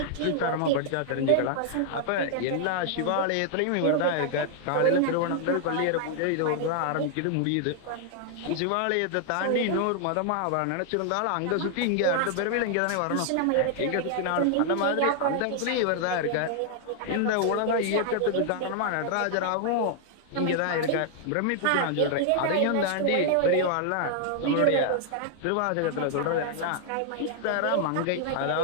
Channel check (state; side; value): different; both; correlation 0.00